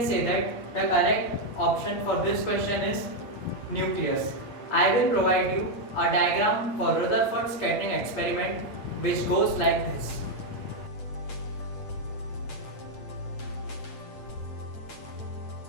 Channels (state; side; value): late; right; 8.7 ms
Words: say that the correct option for this question is nucleus. I will provide you a diagram for Rutherford scattering experiment which goes like this.